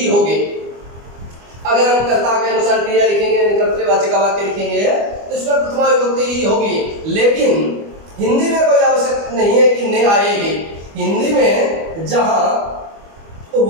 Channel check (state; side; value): late; left; 25 ms